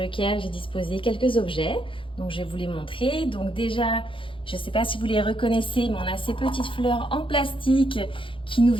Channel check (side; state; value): right; late; 0.25 ms